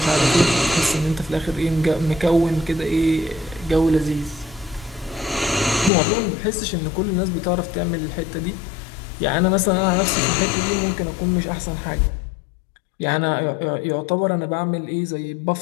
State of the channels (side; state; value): right; drops out; at 5.9 s